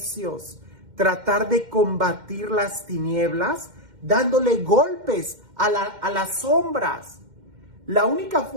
tratar de combatir las tinieblas dándole golpes a las sombras. La única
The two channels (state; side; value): late; left; 2.1 ms